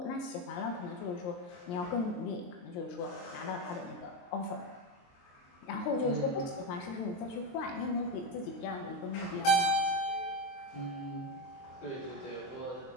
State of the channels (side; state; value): right; late; 23 ms